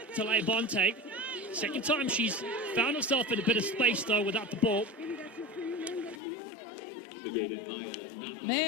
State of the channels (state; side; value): drops out; right; at 6.2 s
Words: Tale Bonte. Second time she's found herself in a bit of space though without the ball.